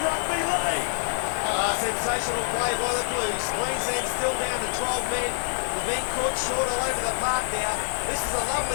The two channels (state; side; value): silent; right; digital silence